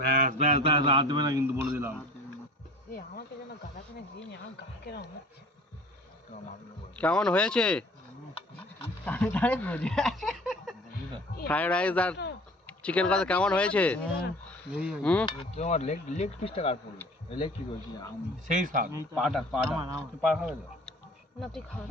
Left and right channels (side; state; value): both; normal; correlation 0.45